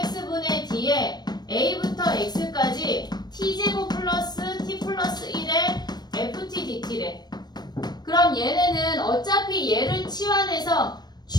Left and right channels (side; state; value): right; late; 0.20 ms